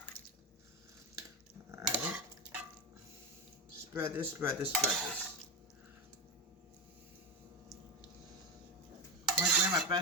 Alright. Spread this, spread this, spread this. My Grandma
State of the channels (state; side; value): normal; both; correlation 0.16